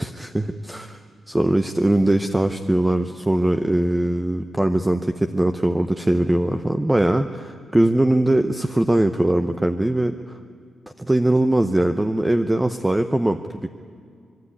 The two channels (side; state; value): both; normal; correlation 0.98